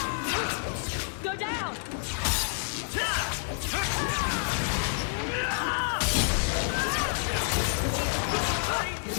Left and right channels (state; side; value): silent; right; digital silence